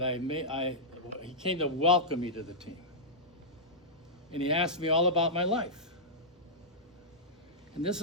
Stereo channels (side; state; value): both; normal; correlation -0.12